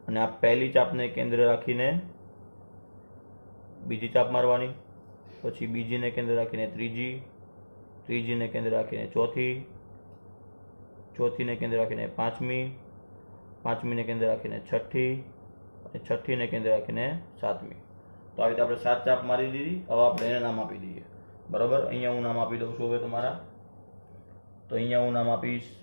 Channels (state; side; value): inverted; both; correlation -1.00